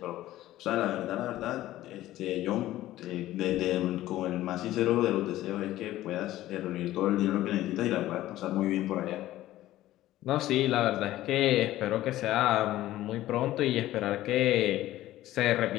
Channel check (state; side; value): quieter; right; 14.9 dB